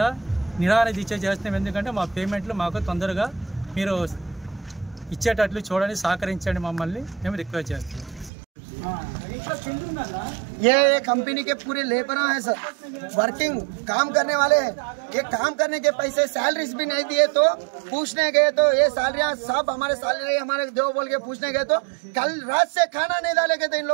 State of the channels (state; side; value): drops out; left; at 8.3 s